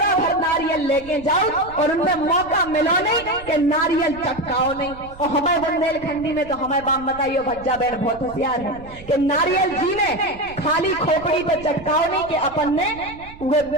भर नारियल लेके जाओ और उनमें मौका मिलो नहीं कि नारियल चटकाओ नहीं। और हमारे बुंदेलखंडी में तो हमारे बाप बताइयो भज्जा बहन बहुत होशियार है कि नारियल जी ने खाली खोपड़ी पे चटकाओ नहीं कि अपन ने वो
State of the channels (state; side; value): noise; right; rumble, 18 dB below the sound